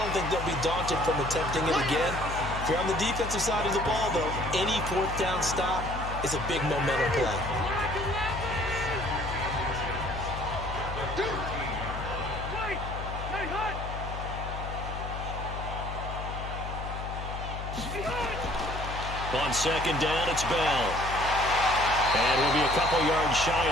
don't think they'll be daunted from attempting it again. If you're on the defensive side of the ball, though, any 4th down stop is a big momentum play. On 2nd down, it's Bell. And we'll be a couple yards shy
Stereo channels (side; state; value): left; noise; hum, 7 dB below the sound